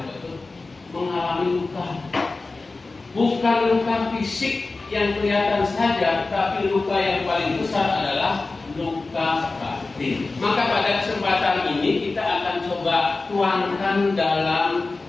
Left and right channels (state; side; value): quieter; right; 3.6 dB